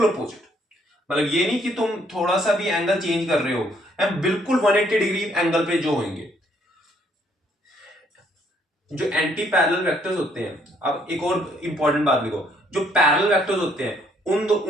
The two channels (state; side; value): normal; both; correlation 0.67